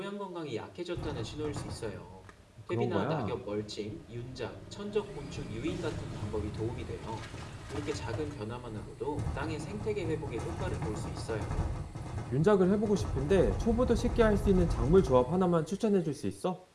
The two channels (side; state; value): both; identical; correlation 1.00